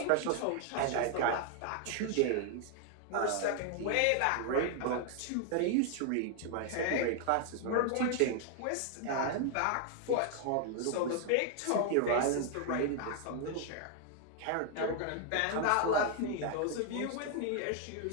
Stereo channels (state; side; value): different; both; correlation 0.00